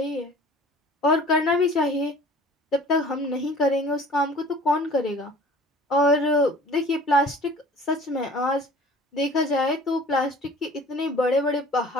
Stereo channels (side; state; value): both; normal; correlation 0.47